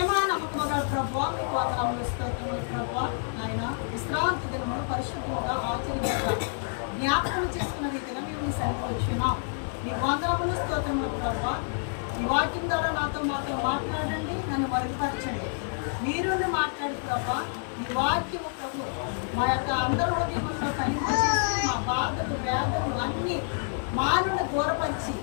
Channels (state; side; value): silent; right; digital silence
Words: నమ్మకము గల ప్రభువా, మీకు వందనములు స్తోత్రములు ప్రభువా. నాయన విశ్రాంతి దినమును పరిశుద్ధముగా ఆచరించాలి జ్ఞాపకం చేసుకున్న రీతిగా మేము మీ సన్నిధికి వచ్చినాం. మీకు వందనములు స్తోత్రములు ప్రభువా. ఈ వాక్యం ద్వారా మాతో మాట్లాడండి, నన్ను మరుగుపరచండి. మీరు మాట్లాడు ప్రభా. ఈ వాక్యము ప్రభు మా యొక్క అందరి హృదయంలో కలింపచేసి మా బాధలు వేదనలు అన్నీ మానవుని దూరపరిచి